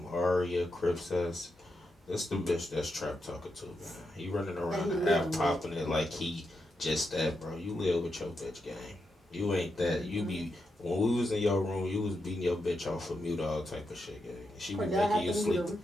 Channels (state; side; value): normal; both; correlation 0.85